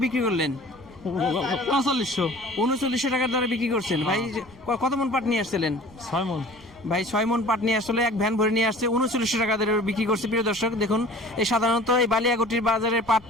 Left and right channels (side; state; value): right; noise; rumble, 24 dB below the sound